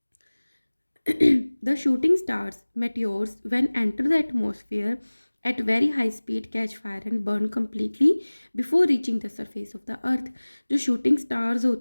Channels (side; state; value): both; inverted; correlation -1.00